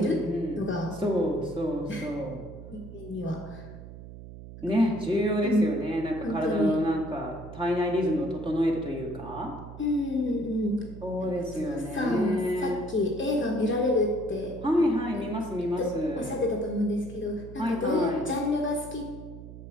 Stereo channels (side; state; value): right; noise; hum, 14 dB below the sound